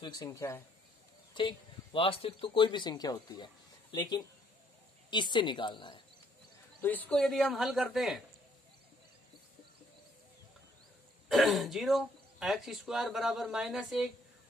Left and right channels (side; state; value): both; normal; correlation 0.66